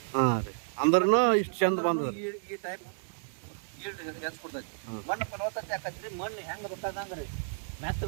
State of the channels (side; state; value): left; silent; 57 dB below the other